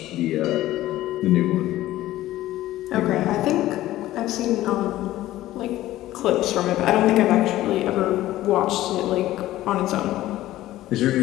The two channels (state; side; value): quieter; right; 15.2 dB